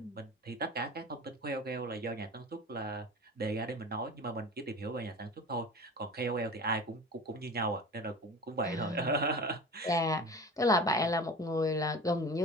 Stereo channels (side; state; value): both; normal; correlation 0.36